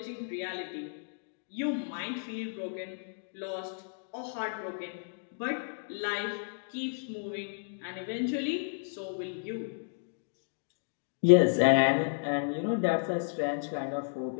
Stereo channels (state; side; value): silent; right; digital silence